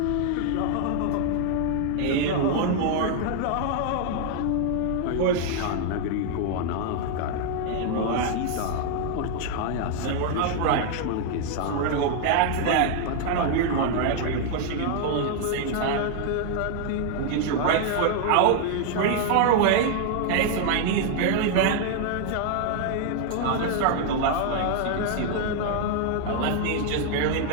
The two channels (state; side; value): different; both; correlation 0.00